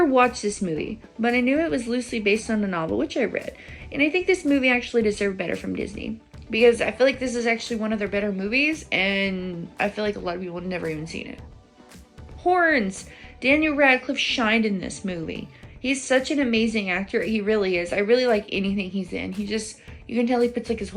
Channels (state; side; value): identical; both; correlation 1.00